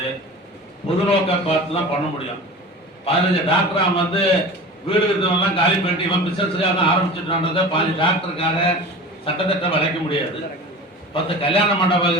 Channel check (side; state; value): both; normal; correlation 0.36